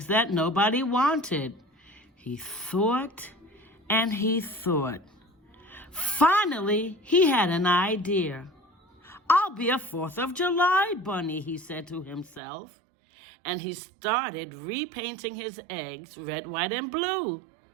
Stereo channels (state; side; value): drops out; left; at 12.4 s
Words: that nobody wanted. He thought and he thought. Finally, he had an idea. I'll be a 4th of July bunny, he said to himself. And he started repainting his eggs red, white, and blue.